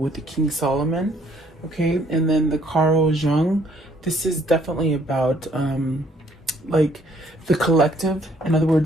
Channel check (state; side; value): normal; both; correlation 0.64